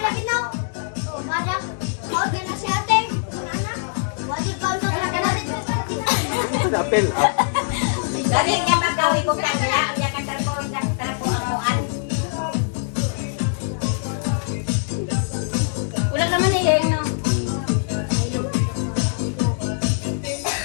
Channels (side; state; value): right; silent; digital silence